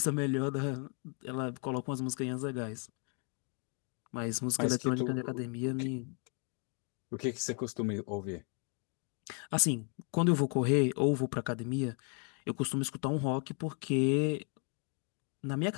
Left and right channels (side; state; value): right; quieter; 39.5 dB